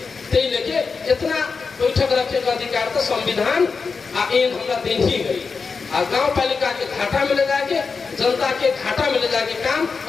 ते लेके इतना बैठक रखे का अधिकार तो संविधान आ एन हमरा देन ही है। आ गाँव पालिका के घाटा में ले जाके जनता के घाटा में ले जाके काम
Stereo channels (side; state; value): right; quieter; 4.9 dB